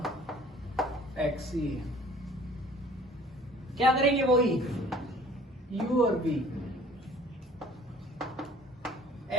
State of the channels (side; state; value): both; normal; correlation 0.51